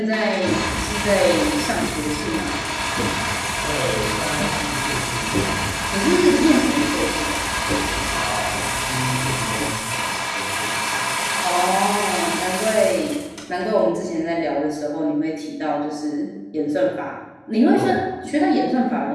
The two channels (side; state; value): both; identical; correlation 1.00